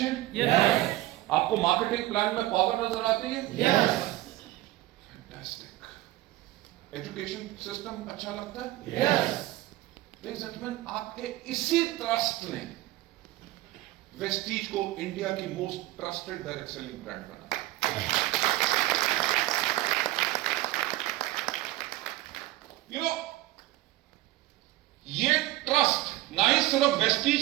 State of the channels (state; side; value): quieter; left; 17.1 dB